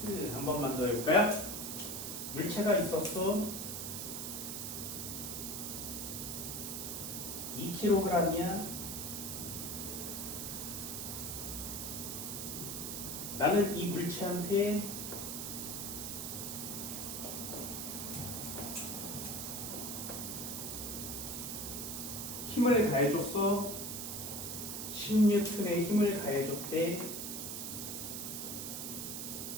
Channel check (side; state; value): right; noise; hiss, 4 dB below the sound